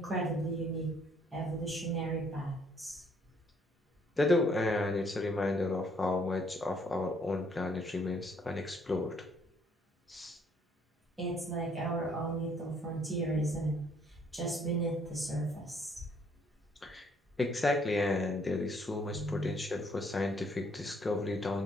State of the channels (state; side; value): normal; both; correlation 0.66